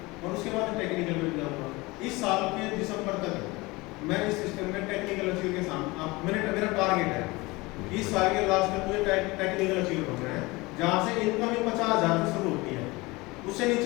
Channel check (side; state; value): right; quieter; 23.0 dB